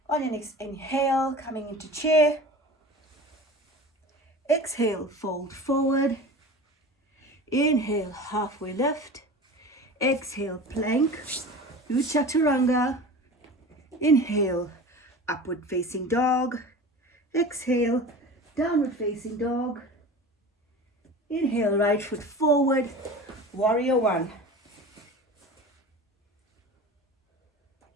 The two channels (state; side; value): normal; both; correlation 0.35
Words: On your next inhale, coming into chair. Exhale, fold forward. Inhale, halfway lift. Exhale, plank. Do chaturanga. Inhale, upward facing dog. Exhale, downward facing dog. Inhale, right foot forward, warrior one.